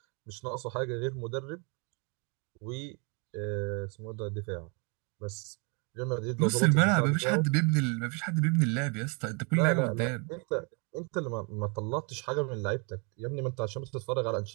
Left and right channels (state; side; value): quieter; left; 33.8 dB